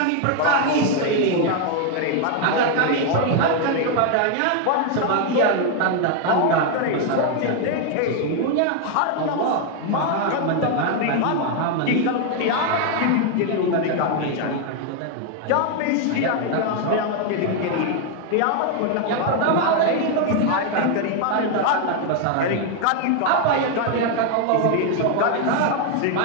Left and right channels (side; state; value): both; different; correlation 0.01